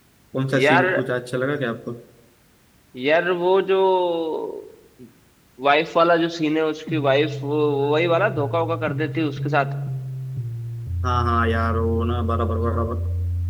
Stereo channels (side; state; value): both; identical; correlation 1.00